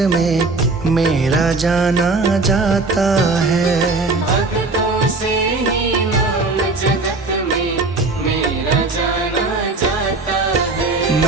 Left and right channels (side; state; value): left; quieter; 3.6 dB